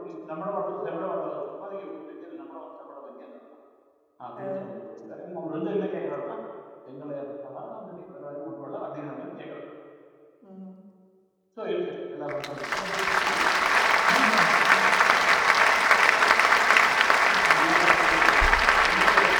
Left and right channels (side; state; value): both; identical; correlation 1.00